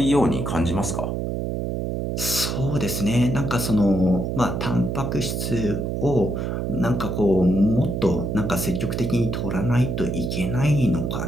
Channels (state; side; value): noise; right; hum, 2 dB below the sound